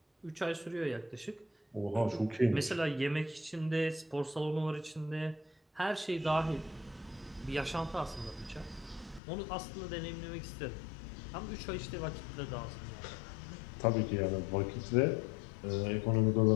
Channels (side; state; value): right; drops out; at 9.2 s